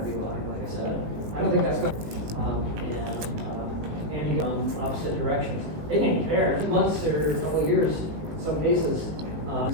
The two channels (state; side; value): late; left; 19 ms